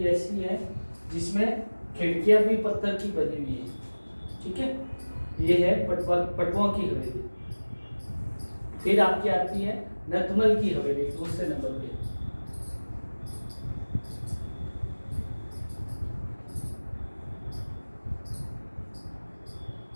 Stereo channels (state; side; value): inverted; both; correlation -1.00